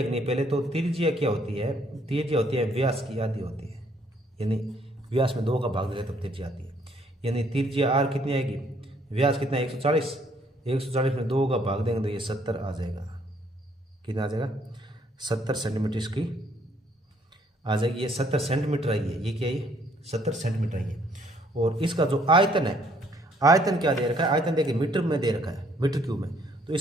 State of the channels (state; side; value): normal; both; correlation 0.65